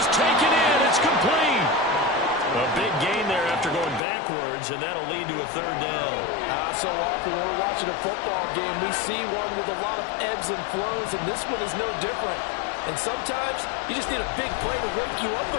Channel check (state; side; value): drops out; right; at 4.0 s